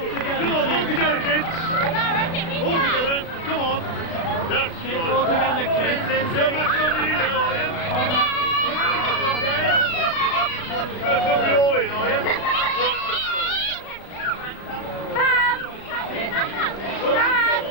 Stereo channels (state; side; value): late; right; 36 ms